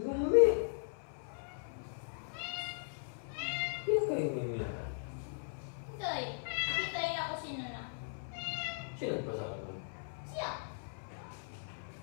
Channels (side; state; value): right; silent; 52 dB below the other